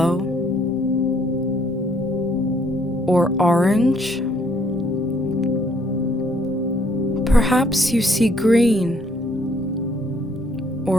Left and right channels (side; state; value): both; normal; correlation 0.65